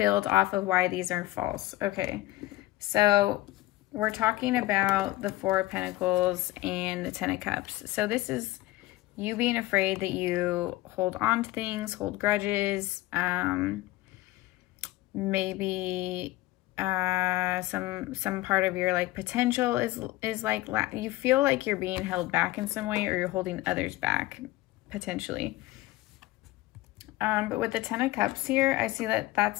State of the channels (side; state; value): right; quieter; 18.0 dB